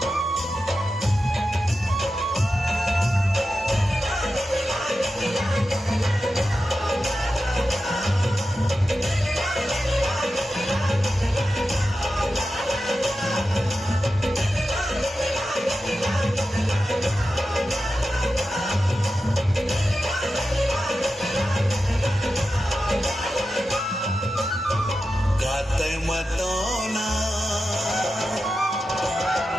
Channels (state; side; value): normal; both; correlation 0.91